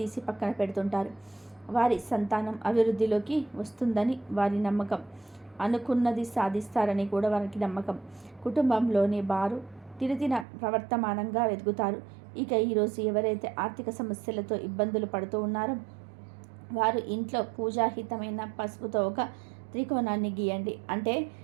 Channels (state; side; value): drops out; left; at 10.5 s